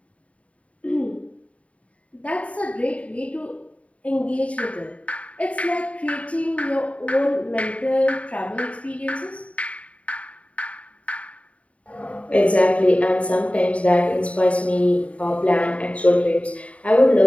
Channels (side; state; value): right; late; 0.065 ms